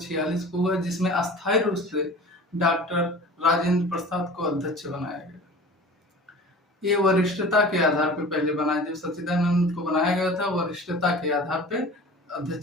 को हुआ, जिसमें अस्थायी रूप से डॉक्टर राजेंद्र प्रसाद को अध्यक्ष बनाया गया। ये वरिष्ठता के आधार पर पहले बनाया, जब सच्चिदानंद को बनाया गया था वरिष्ठता के आधार पर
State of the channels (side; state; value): both; normal; correlation 0.40